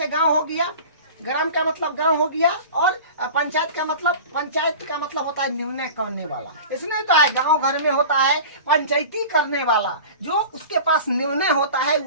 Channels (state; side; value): inverted; both; correlation -0.36